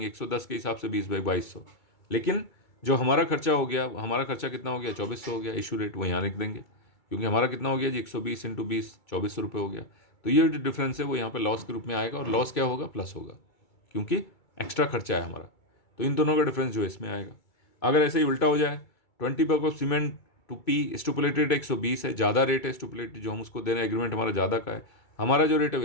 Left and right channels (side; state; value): right; late; 2.3 ms